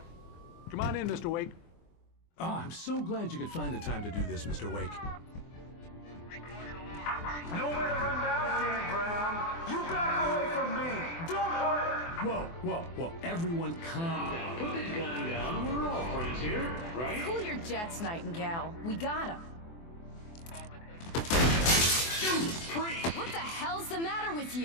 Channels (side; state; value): right; late; 24 ms